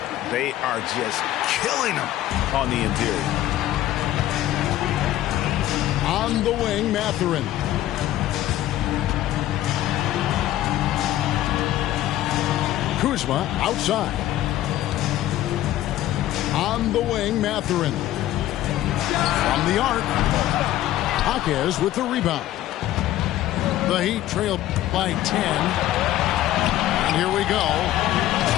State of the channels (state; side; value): quieter; right; 14.0 dB